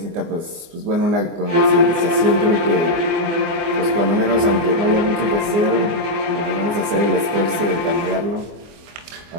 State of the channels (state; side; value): late; left; 24 ms